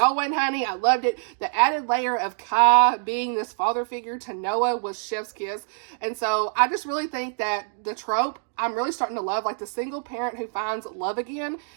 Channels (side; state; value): left; silent; digital silence